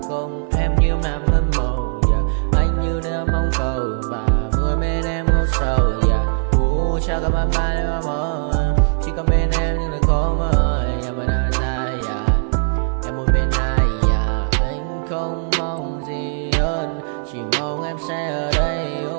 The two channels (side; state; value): left; silent; digital silence